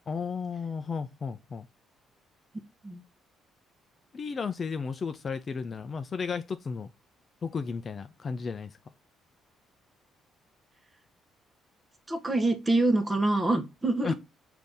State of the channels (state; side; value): normal; both; correlation 0.84